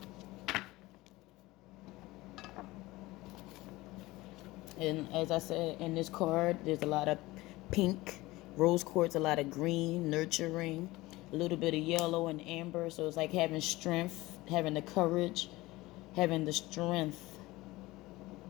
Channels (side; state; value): right; quieter; 19.6 dB